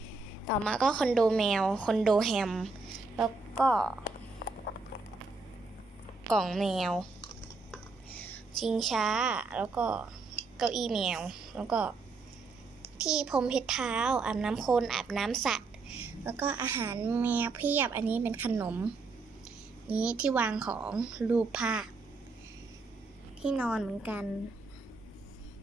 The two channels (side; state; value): left; quieter; 4.0 dB